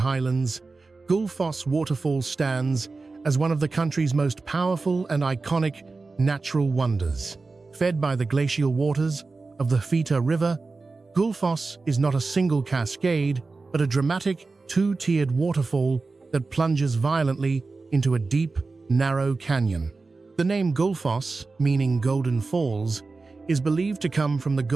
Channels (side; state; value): left; quieter; 3.9 dB